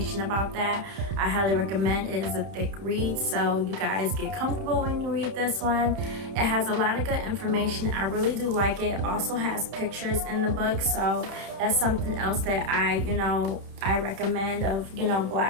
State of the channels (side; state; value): left; late; 31 ms